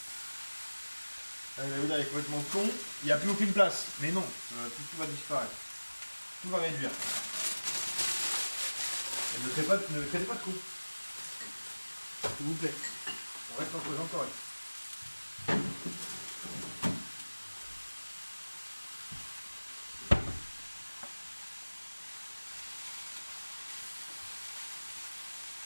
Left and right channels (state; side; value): inverted; both; correlation -1.00